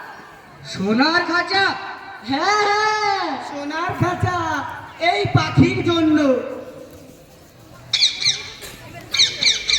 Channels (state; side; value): identical; both; correlation 1.00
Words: সোনার খাঁচা? হ্যাঁ হ্যাঁ, সোনার খাঁচা। এই পাখির জন্য।